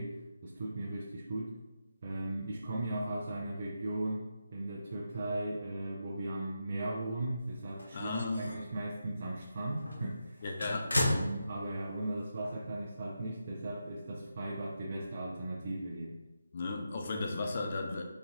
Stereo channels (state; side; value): inverted; both; correlation -0.86